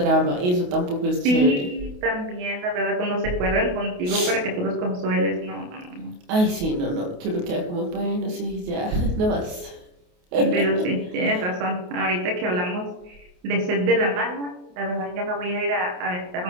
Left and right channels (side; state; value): left; late; 28 ms